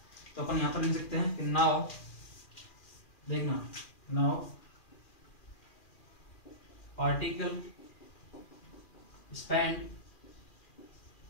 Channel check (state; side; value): late; right; 2.4 ms